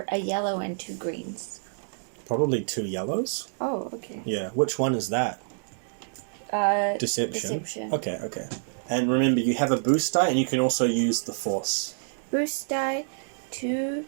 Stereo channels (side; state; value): left; silent; digital silence